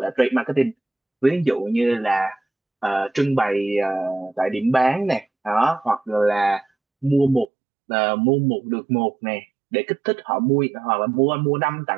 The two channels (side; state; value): left; drops out; at 7.5 s